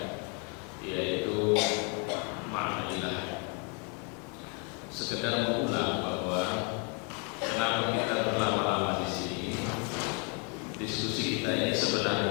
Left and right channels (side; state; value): right; quieter; 36.4 dB